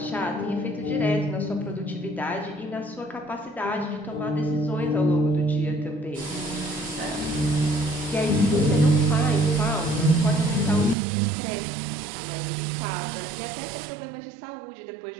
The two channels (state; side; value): drops out; left; at 11.0 s